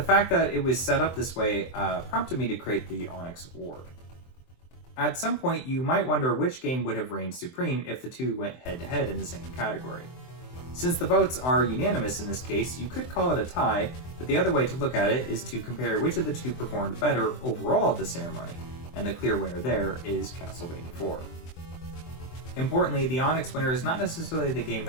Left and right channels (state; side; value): late; right; 23 ms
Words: fact that it was set up this way prompted me to create the Onyx Award. At some point, you might wonder which game would have reigned supreme if the two went head-to-head in the same category. Since the votes are unanimous in this case, you could call it a tie, but the other way to look at it is to compare which of the two performed better overall at the ceremony, and the clear winner there is Castlevania 4. Importantly, the Onyx winner is not necessarily the game